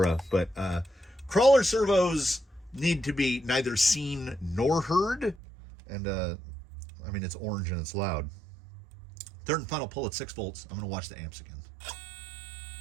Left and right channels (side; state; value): left; drops out; at 5.4 s